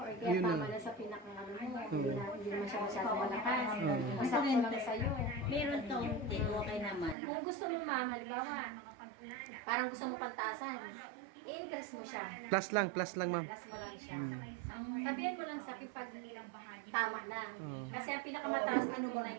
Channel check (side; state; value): left; drops out; at 7.2 s